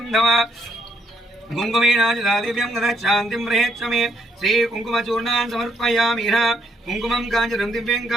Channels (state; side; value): normal; both; correlation 0.73